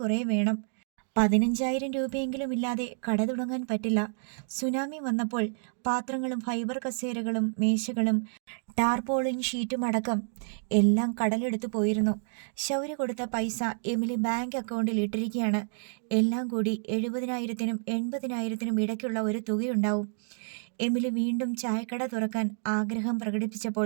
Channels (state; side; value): silent; left; digital silence